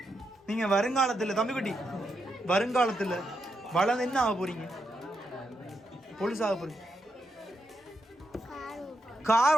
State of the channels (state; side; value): normal; both; correlation 0.83